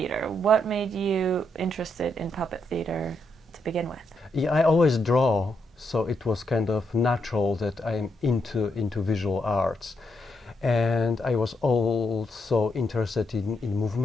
What made you interested in puppet theater to begin with? Yeah, I always draw, so it was kind of natural that I'm into visual arts. And I was also interested in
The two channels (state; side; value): normal; both; correlation 0.79